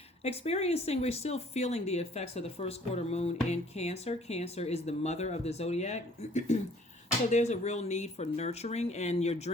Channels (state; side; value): normal; both; correlation 0.56